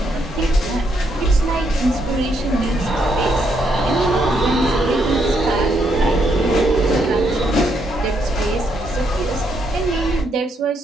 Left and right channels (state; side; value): normal; both; correlation 0.75